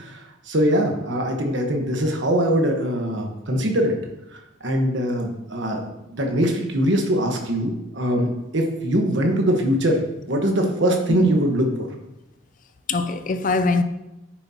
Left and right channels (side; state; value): both; normal; correlation 0.49